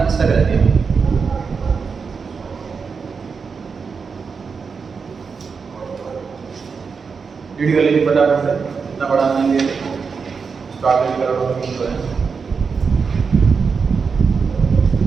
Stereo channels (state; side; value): quieter; left; 5.4 dB